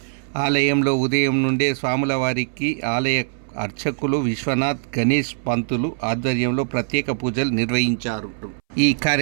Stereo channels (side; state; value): left; silent; 63 dB below the other